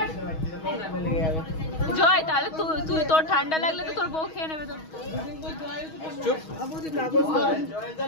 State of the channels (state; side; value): late; right; 6.3 ms